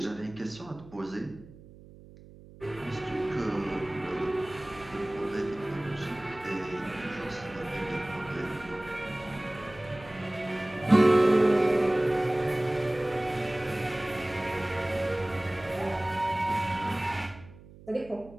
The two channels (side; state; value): right; noise; hum, 20 dB below the sound